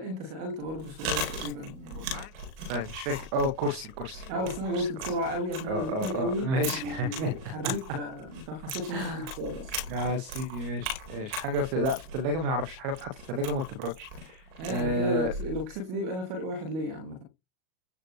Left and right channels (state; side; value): late; left; 38 ms